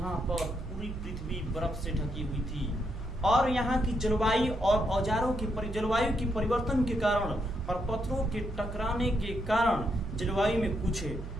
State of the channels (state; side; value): noise; right; hum, 9 dB below the sound